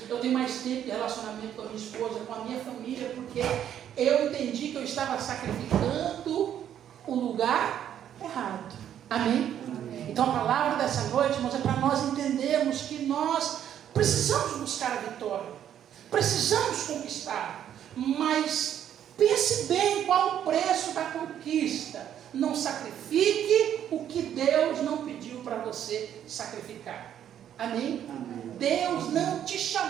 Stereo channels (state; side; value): quieter; left; 10.1 dB